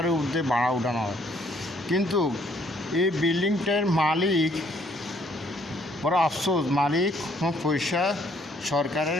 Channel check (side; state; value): both; normal; correlation 0.65